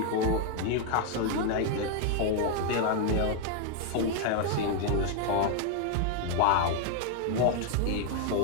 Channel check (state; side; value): different; both; correlation 0.00